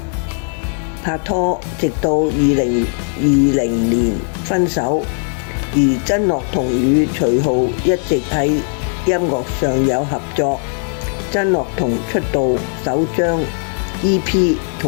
拍拖，直到2020年分手。而曾樂彤與徐浩一直喺音樂上有合作。曾樂彤出道首張 EP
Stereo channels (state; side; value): silent; right; 55 dB below the other